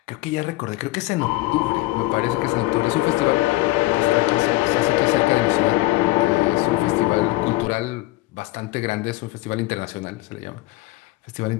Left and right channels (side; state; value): right; quieter; 19.4 dB